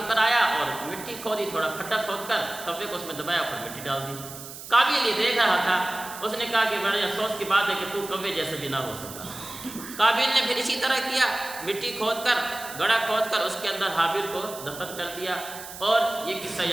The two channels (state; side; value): noise; right; hiss, 12 dB below the sound